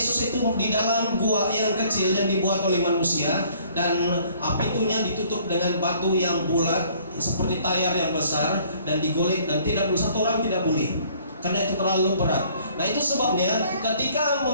itu di dalam gua yang kecil yang dibuat oleh manusia, dan pintunya ditutup dengan batu yang bulat seperti tayar yang besar dan digolek, dan tidak boleh, satu orang tidak boleh karena itu terlalu berat. Nah, itu sebabnya ketika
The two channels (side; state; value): both; inverted; correlation -0.58